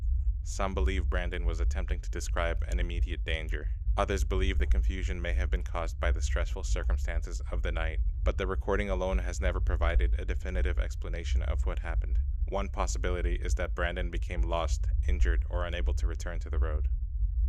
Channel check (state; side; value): identical; both; correlation 1.00